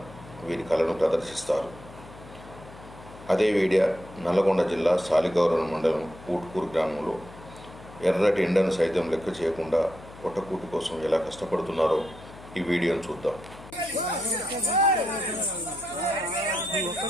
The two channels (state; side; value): noise; left; hum, 18 dB below the sound